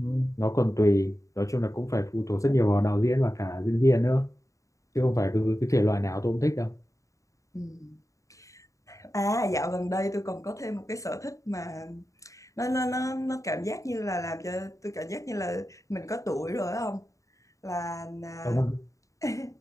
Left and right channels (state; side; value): late; right; 0.16 ms